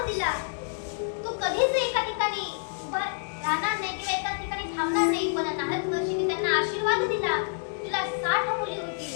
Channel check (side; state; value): right; silent; digital silence